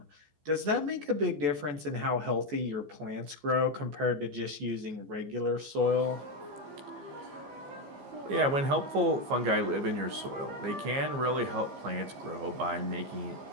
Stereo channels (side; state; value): left; late; 14 ms